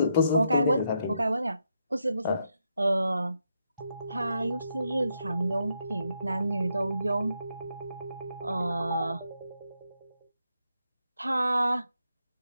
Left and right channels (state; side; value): inverted; both; correlation -0.80